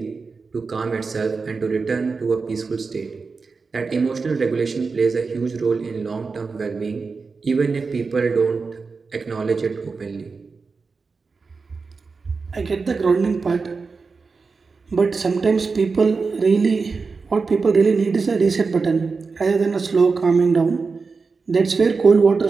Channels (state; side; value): quieter; left; 4.6 dB